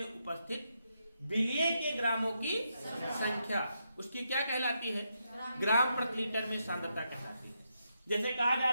उपस्थित विलेय के ग्रामों की संख्या उसकी क्या कहलाती है? ग्राम प्रति लीटर में सांद्रता कहलाती है। जैसे कहा जा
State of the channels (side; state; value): both; inverted; correlation -0.82